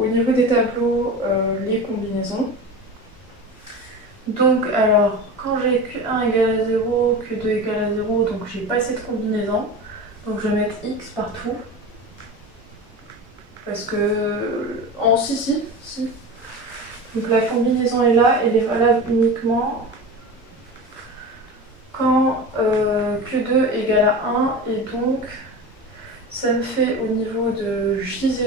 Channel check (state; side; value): normal; both; correlation 0.30